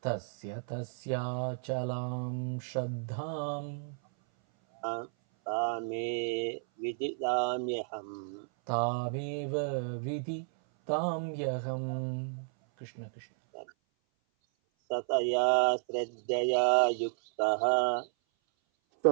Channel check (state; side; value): silent; left; 56 dB below the other